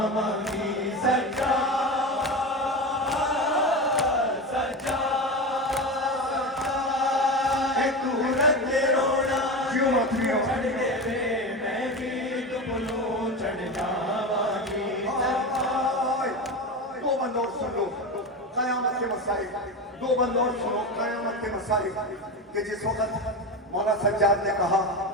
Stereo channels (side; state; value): both; normal; correlation 0.22